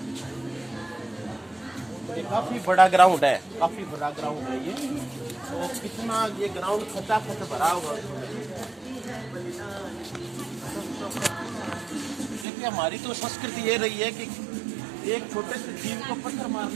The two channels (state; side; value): drops out; left; at 12.5 s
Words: ये काफी बड़ा ग्राउंड है, काफी बड़ा ग्राउंड है ये। तो कितना ये ग्राउंड खचाखच भरा हुआ। देखिए हमारी तो संस्कृति ये रही है कि एक छोटे से जीव को पत्थर